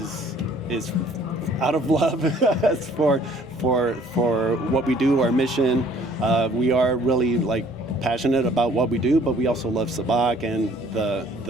out of love for what we do, our mission. We are really like passionate about what we do, but we also love Sabacc and the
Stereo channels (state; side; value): normal; both; correlation 0.57